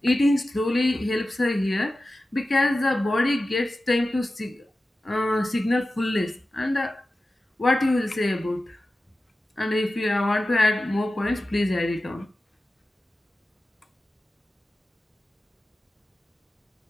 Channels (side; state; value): both; normal; correlation 0.94